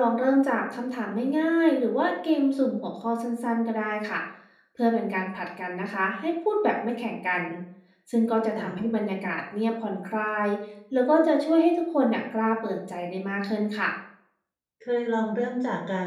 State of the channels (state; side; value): identical; both; correlation 1.00